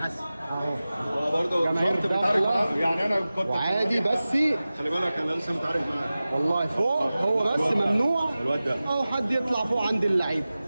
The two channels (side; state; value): both; inverted; correlation -0.96